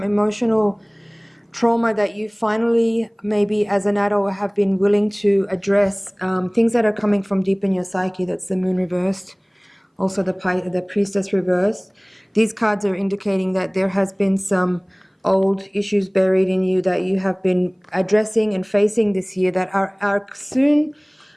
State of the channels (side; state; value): both; identical; correlation 1.00